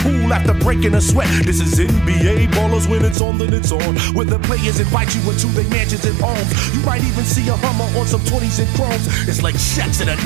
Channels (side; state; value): left; drops out; at 3.2 s